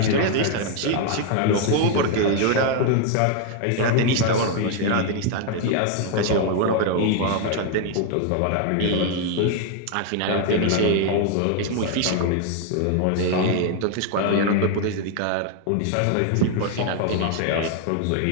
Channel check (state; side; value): different; both; correlation 0.01